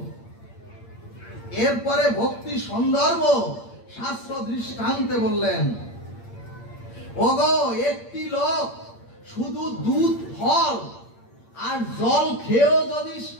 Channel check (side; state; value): right; late; 8.7 ms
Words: এরপরে ভক্তি সন্দর্ভ শাস্ত্র দৃষ্টান্তে বললেন, ওগো একটি লোক শুধু দুধ ফল আর জল খেয়েও যদি